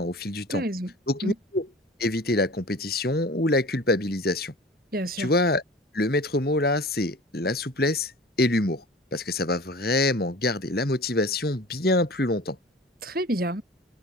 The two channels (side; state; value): both; normal; correlation 0.40